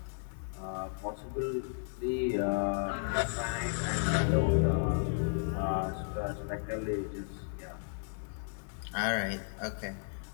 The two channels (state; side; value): silent; right; 55 dB below the other